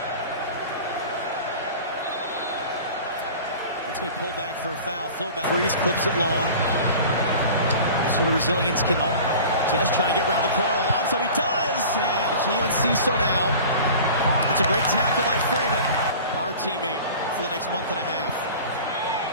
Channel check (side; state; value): both; inverted; correlation -0.40